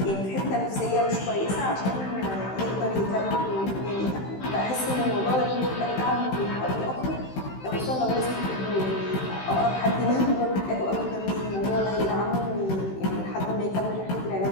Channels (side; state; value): right; late; 16 ms